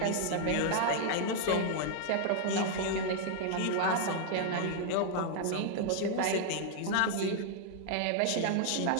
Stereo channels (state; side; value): different; both; correlation -0.01